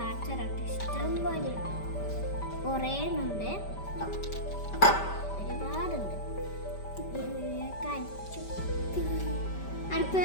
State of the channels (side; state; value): right; late; 5.1 ms